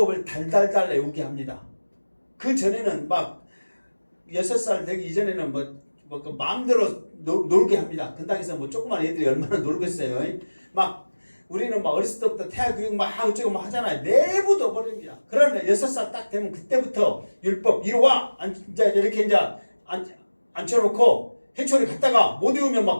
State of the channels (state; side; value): inverted; both; correlation -1.00